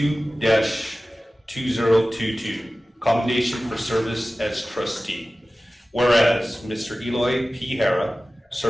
commendation for service as trustee. Whereas Mr. Eloy P. Hara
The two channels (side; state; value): both; normal; correlation 0.96